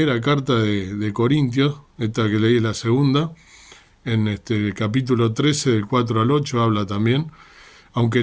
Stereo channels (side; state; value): both; identical; correlation 1.00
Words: carta de Corintios, esta que leí es la segunda, en el capítulo 13, del 4 al 8, habla también, aunque